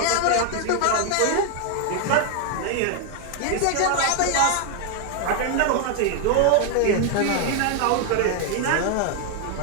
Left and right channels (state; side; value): different; both; correlation 0.00